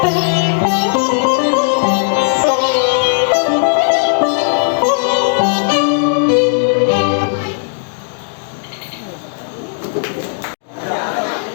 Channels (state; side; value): silent; right; digital silence